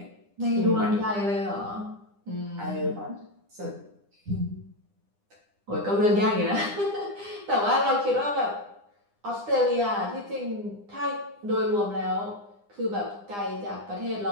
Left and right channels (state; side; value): late; left; 9.9 ms